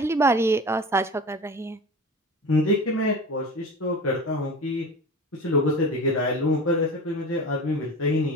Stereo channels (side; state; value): both; normal; correlation 0.33